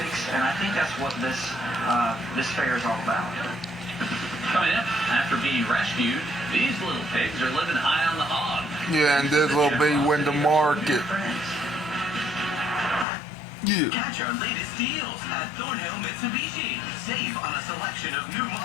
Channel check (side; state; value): right; drops out; at 13.1 s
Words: and I think that's what this fair is all about. Coming up, after being rescued, these little pigs are living high on the hog. Yeah, and this will be when the market. Yeah. Catch our latest deals at Thornhill Mitsubishi. Save on a selection of new